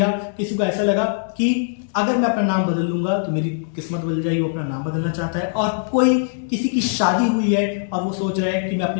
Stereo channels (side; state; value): right; silent; 65 dB below the other